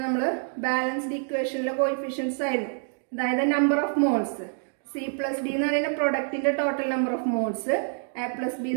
നമ്മൾ ബാലൻസ്ഡ് ഇക്വേഷനിലെ കോഎഫിഷ്യൻസ് ആയിരുന്നു. അതായത് number of moles. C plus D എന്ന് പറയുന്ന പ്രൊഡക്റ്റിന്റെ total number of moles, A plus B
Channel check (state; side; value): silent; left; 60 dB below the other